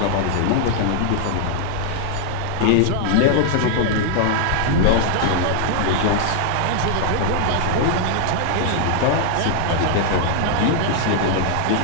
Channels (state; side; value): different; both; correlation 0.00